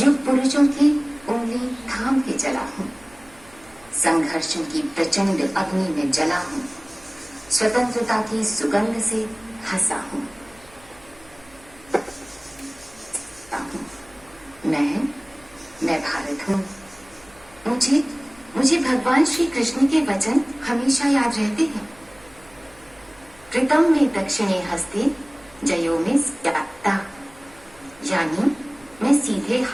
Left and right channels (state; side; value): noise; right; hum, 26 dB below the sound